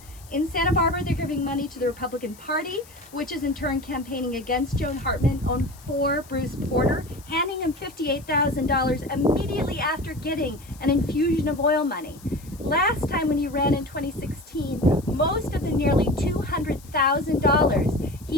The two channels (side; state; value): left; noise; hiss, 23 dB below the sound